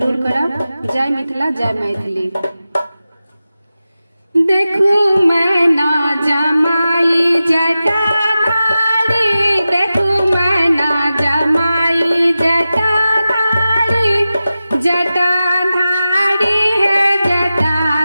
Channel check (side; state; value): both; inverted; correlation -0.93